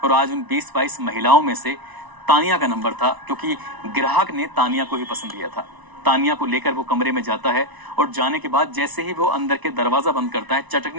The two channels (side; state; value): left; late; 1.0 ms